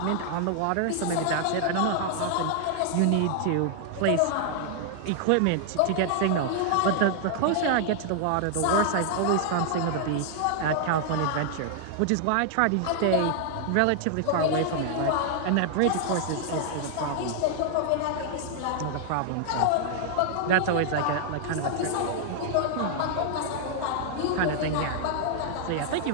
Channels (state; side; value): different; both; correlation -0.01